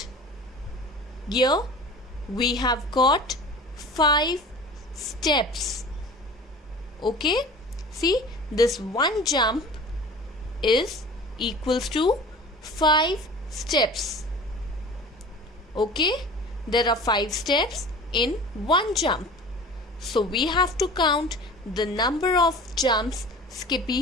here we have got 5 steps. Okay? See, this one jump is equals to 5 steps. Okay? There are 5 steps in one jump. So we have to count the number of jumps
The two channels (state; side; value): normal; both; correlation 0.40